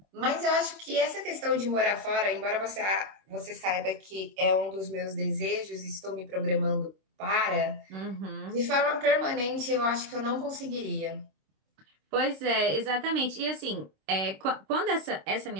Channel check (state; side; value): late; left; 26 ms